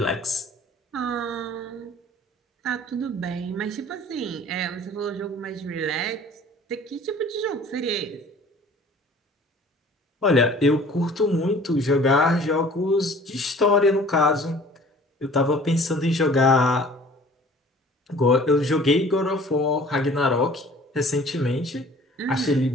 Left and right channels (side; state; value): both; normal; correlation 0.49